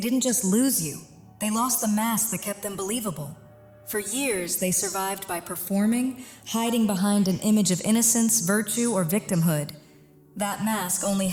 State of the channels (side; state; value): both; identical; correlation 1.00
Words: didn't just lose you, they lost the mask that kept them believable. For years, they survived by performing, hiding behind an image of innocence, virtue, or victimhood. That mask only